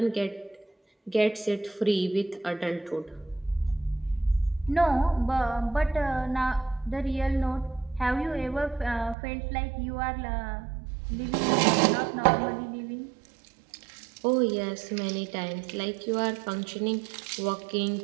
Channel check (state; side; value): drops out; left; at 9.2 s